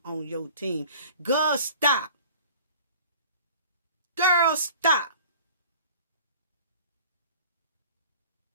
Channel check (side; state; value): both; inverted; correlation -0.47